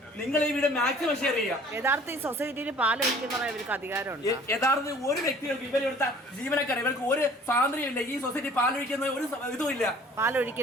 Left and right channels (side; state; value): both; normal; correlation 0.51